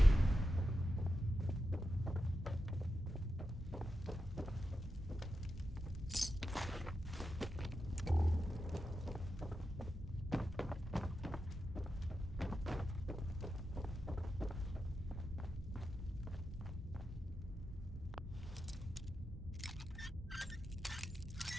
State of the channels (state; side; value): normal; both; correlation 0.89